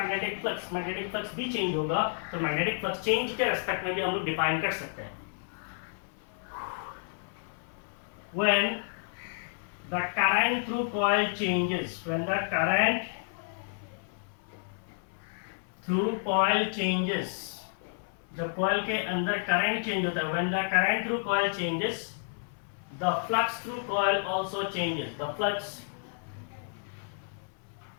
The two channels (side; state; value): right; silent; 57 dB below the other